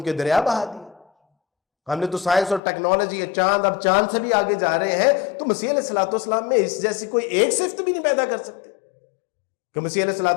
کے دریا بہا دیے، ہم نے تو سائنس اور ٹیکنالوجی، چاند، اب چاند سے بھی آگے جا رہے ہیں، تو مسیح علیہ السلام میں اس جیسی کوئی ایک صفت بھی نہیں پیدا کر سکتے کہ مسیح علیہ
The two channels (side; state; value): right; drops out; at 2.6 s